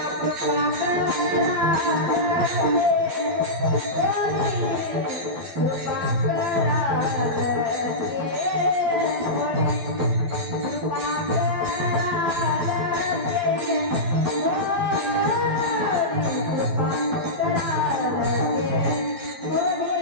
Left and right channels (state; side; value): late; left; 12 ms